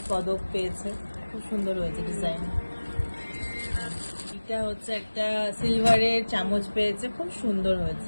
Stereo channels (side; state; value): both; inverted; correlation -1.00